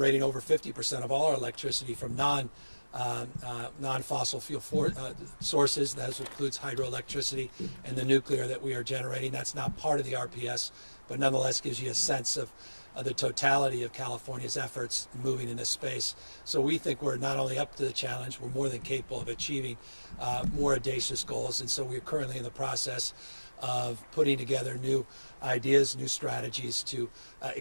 over 50% of all our electricity from non-fossil fuel sources. That includes hydroelectricity and the nuclear that we are generating. That's not part of the RPS, but nonetheless gives you a sense of the totality of California's efforts moving in this space. So we think we're not only up to the challenge, we're more than capable of achieving more audacious goals. And so we're currently in the process of putting together new ideas, new strategies to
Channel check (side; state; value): both; inverted; correlation -1.00